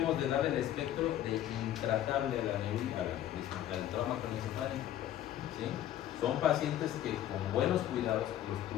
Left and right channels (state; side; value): quieter; right; 12.0 dB